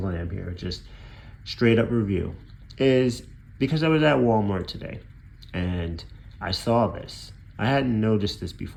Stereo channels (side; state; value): both; identical; correlation 1.00